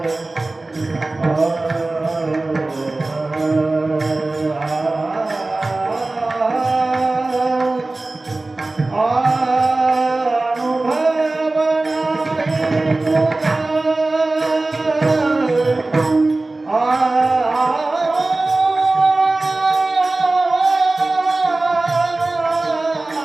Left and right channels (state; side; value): quieter; left; 3.1 dB